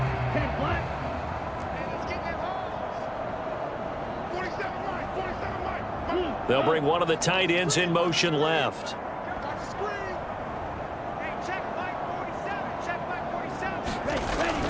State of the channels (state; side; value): identical; both; correlation 1.00